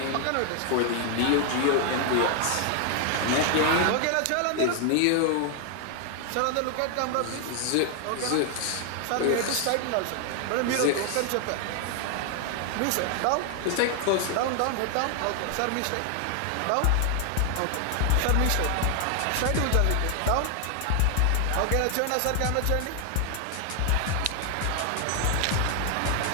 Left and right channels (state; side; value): different; both; correlation 0.00